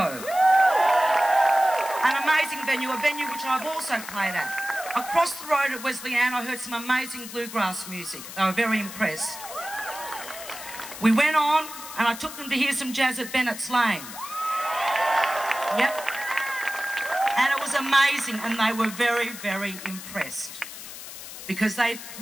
An amazing venue, a venue which I've also played at. Across the road at Wesleyan, I heard some amazing bluegrass music. They were very impressed. We went on, and I took them to hear some jazz at Bennett's Lane. Yep. And it was amazing, and they were very, very impressed, because they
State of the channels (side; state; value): left; noise; hiss, 12 dB below the sound